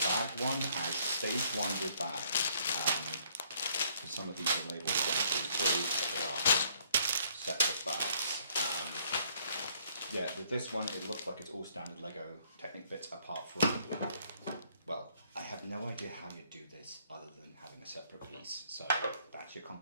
bag one as stage one with bags. Because some of these are labelled 1, 2, 3, but they are separate bags. Yeah, with this one it looks like it's all standard Lego Technic bits apart from, well, I have no idea how you do this other than having a separate piece. So that's your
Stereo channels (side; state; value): both; inverted; correlation -0.65